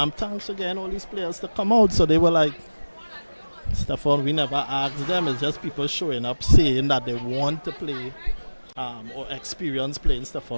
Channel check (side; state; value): both; inverted; correlation -1.00